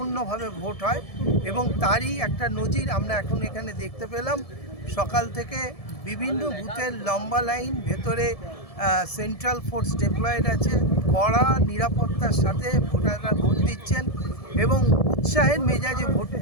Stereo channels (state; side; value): late; right; 1.7 ms